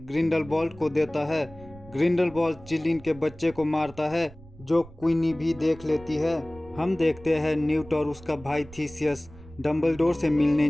को देता है। ग्रिंडलवाल्ड चिलिन के बच्चे को मारता है, जो क्वीनी भी देख लेती है। हम देखते हैं न्यूट और उसका भाई थीसियस डम्बलडोर से मिलने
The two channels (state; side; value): noise; right; rumble, 20 dB below the sound